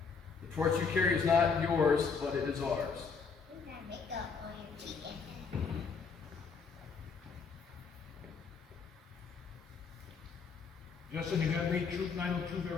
The torch you carry is not yours, but it is ours. Justin, you have made Troop 902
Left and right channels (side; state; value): right; quieter; 5.4 dB